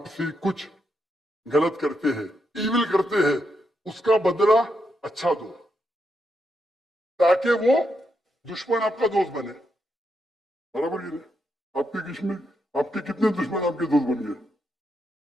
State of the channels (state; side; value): normal; both; correlation 0.82